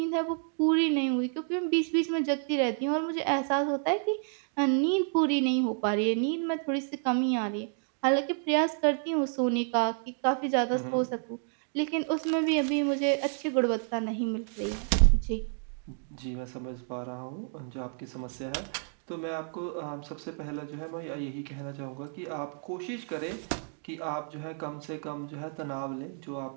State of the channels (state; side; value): silent; left; 58 dB below the other